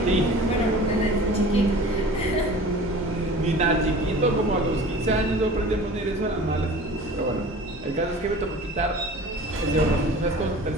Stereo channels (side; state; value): both; normal; correlation 0.42